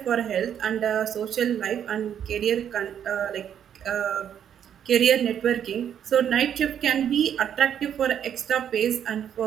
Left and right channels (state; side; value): quieter; left; 9.1 dB